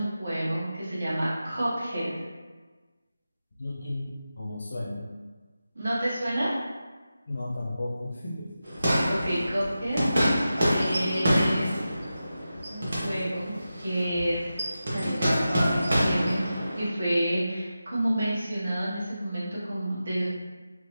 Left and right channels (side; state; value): both; inverted; correlation -0.92